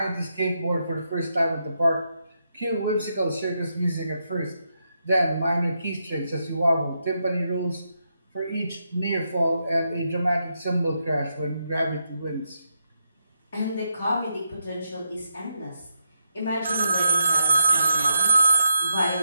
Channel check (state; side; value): inverted; both; correlation -0.83